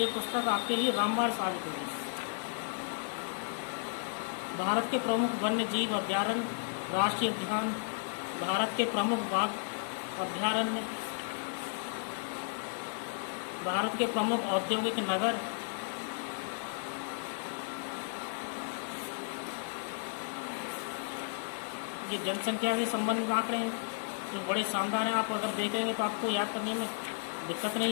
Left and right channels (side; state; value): right; silent; digital silence